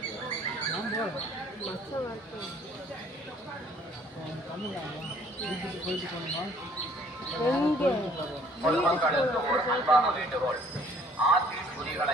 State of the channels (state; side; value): normal; both; correlation 0.58